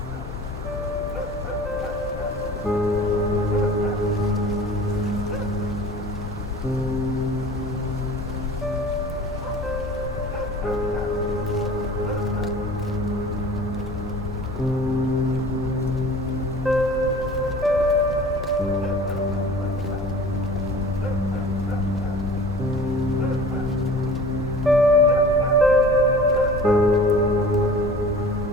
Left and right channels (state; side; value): normal; both; correlation 0.43